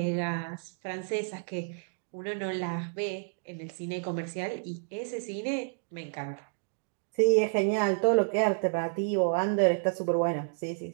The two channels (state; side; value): silent; left; digital silence